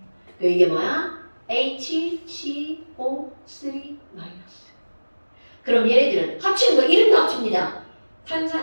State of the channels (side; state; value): both; inverted; correlation -1.00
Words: 이게 뭐야? HCO3 마이너스. 그럼 얘네들은 합치는 거 이름도 합칩니다.